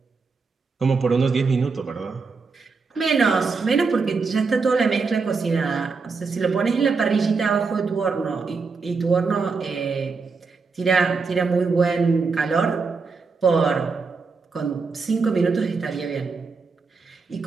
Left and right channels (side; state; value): left; quieter; 4.6 dB